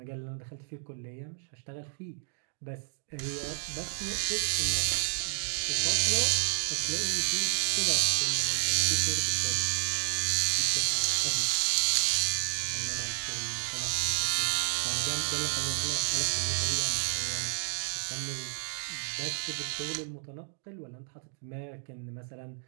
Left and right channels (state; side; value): silent; left; digital silence